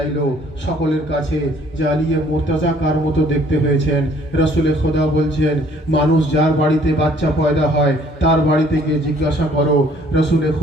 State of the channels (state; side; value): normal; both; correlation 0.59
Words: সকলের কাছে যে আলিয়ে মুর্তজা কার মতো দেখতে হয়েছেন। রাসূলে খোদা বলছেন, মানুষ যার বাড়িতে বাচ্চা পয়দা হয় তার বাড়িতে গিয়ে জিজ্ঞাসা করো। রাসূলে